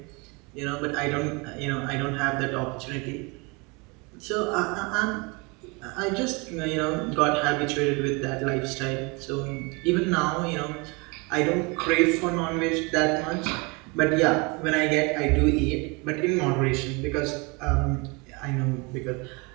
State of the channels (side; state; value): left; quieter; 28.3 dB